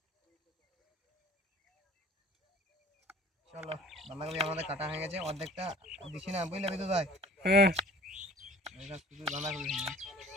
চলো বাঁধাকপি আমাদের কাটা হয়ে গেছে অর্ধেকটা দিছি না বুঝলে বিদ্যুৎ ভাই হ্যাঁ শুধু বাঁধাকপি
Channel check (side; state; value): both; normal; correlation 0.49